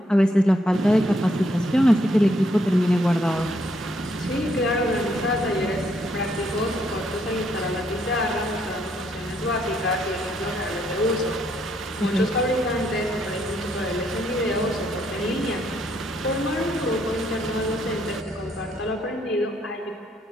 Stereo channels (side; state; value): both; normal; correlation 0.72